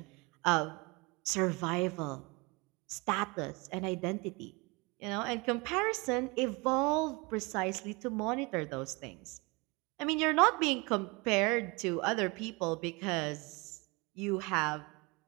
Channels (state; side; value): quieter; left; 27.1 dB